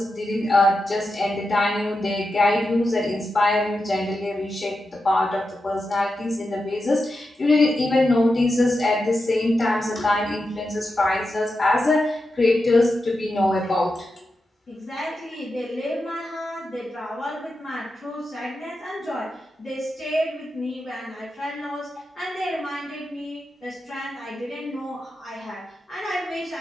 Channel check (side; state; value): both; normal; correlation 0.89